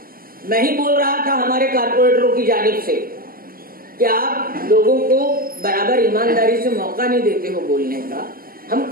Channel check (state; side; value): late; left; 0.42 ms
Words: میں ہی بول رہا تھا ہمارے کارپوریٹروں کی جانب سے کہ آپ لوگوں کو برابر ایمانداری سے موقع نہیں دیتے ہو بولنے کا، ہم